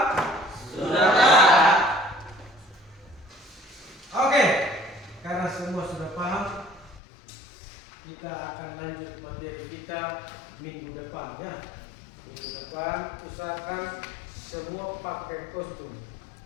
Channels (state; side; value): drops out; right; at 7.0 s